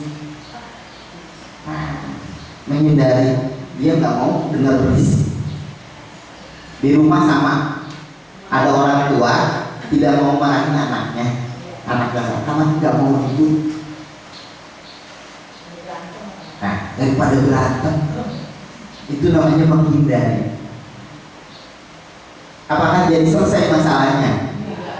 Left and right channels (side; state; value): both; identical; correlation 1.00